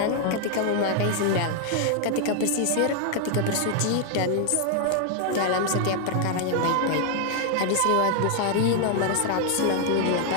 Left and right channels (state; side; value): different; both; correlation 0.00